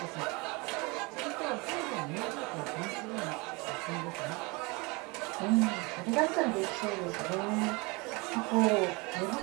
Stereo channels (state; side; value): quieter; left; 27.0 dB